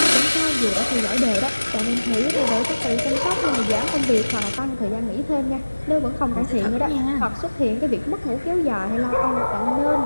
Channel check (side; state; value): both; inverted; correlation -1.00